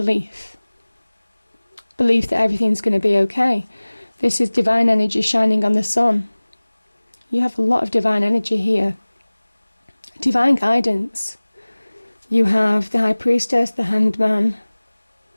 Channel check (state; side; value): inverted; both; correlation -1.00